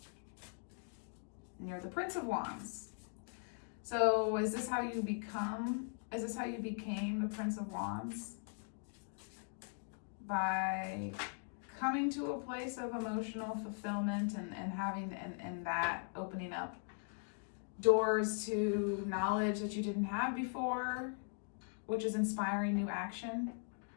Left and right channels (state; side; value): silent; right; 51 dB below the other